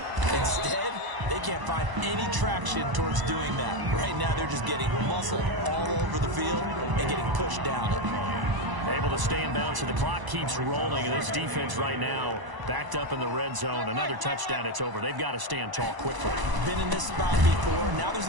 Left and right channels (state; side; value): late; left; 1.0 ms